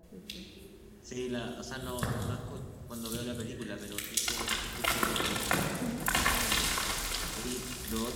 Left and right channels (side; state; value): both; identical; correlation 1.00